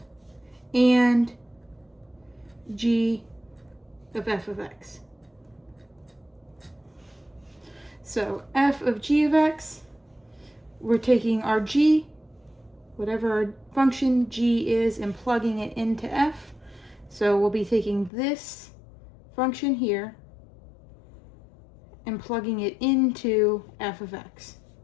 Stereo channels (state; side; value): drops out; right; at 18.1 s